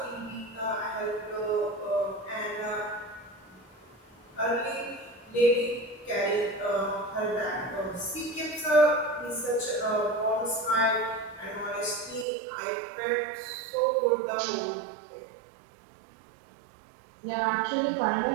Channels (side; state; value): left; drops out; at 12.2 s